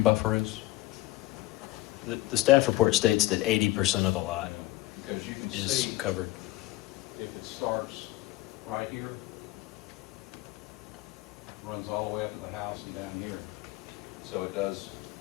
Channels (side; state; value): right; quieter; 18.3 dB